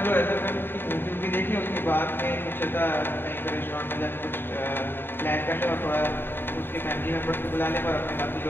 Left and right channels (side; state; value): right; late; 0.10 ms